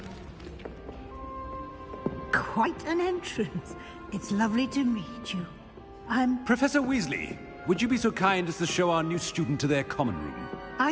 Quite an entrance. It's lovely to meet you. Professor Weasley, would you be so kind as to show our new student to their common room?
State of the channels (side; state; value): both; identical; correlation 1.00